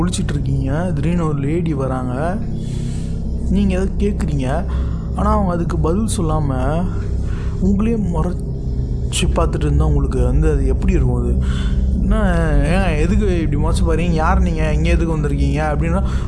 திடீர்னு ஒரு லேடி வராங்க, நீங்கள் எதை கேட்குறீங்க, ஆனால் அவங்க அதுக்கு பதில் சொல்லாமல் உங்களே முறைச்சி பார்த்துட்டு இருந்தால் உங்களுக்கு வந்து அது எப்படி இருக்கும்? அது என்ன, ஏன் எதுக்கு இப்படி முறைச்சி பாருங்க, யார் நீங்கள், இங்கே எதுக்கு வந்திருக்கீங்க அப்படின்னா,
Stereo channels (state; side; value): identical; both; correlation 1.00